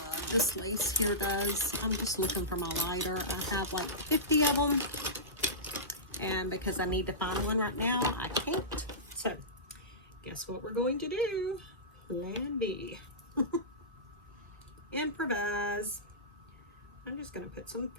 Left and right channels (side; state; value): both; normal; correlation -0.18